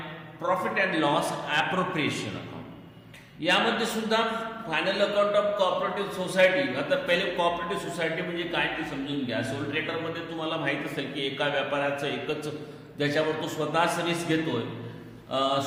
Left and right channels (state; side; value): identical; both; correlation 1.00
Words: profit and loss appropriation account. यामध्ये सुद्धा final account of cooperative society. आता पहिले कोऑपरेटिव्ह सोसायटी म्हणजे काय ते समजून घ्या. सोल ट्रेडरमध्ये तुम्हाला माहीत असेल की एका व्यापाऱ्याचं एकच, ज्याच्यावर तो स्वतःच रिस्क घेतोय,